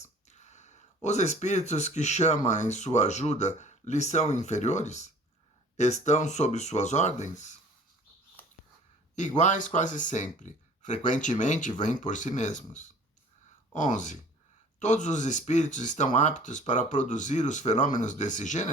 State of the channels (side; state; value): both; normal; correlation 0.49